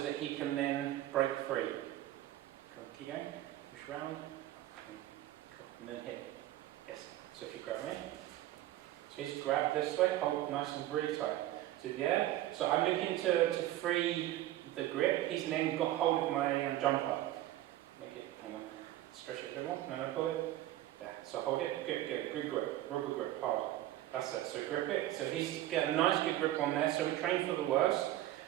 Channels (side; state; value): left; quieter; 14.4 dB